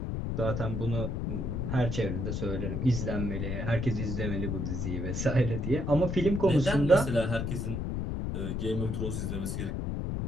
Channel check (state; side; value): noise; left; rumble, 2 dB below the sound